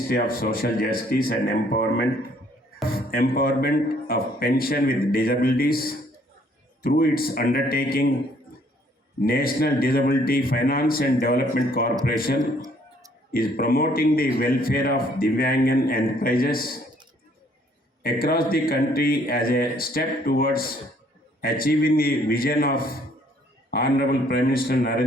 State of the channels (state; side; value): normal; both; correlation 0.63